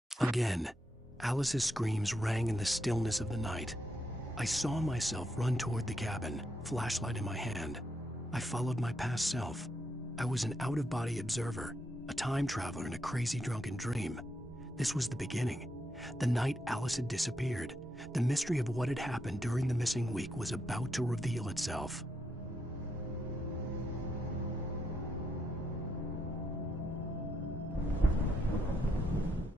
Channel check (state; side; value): normal; both; correlation 0.79